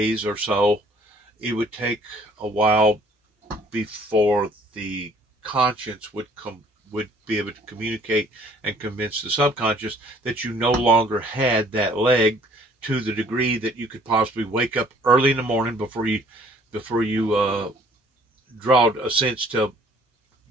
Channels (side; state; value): both; normal; correlation 0.58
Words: or so, it would take a while before the conscience would be able to communicate and convince the subconscious that you no longer had that leg, to the degree that you could possibly wake up early in the morning before you draw a sense to